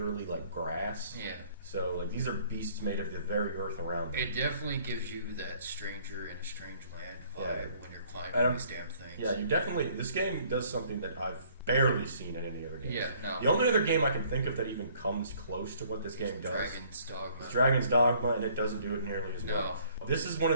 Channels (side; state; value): both; inverted; correlation -0.59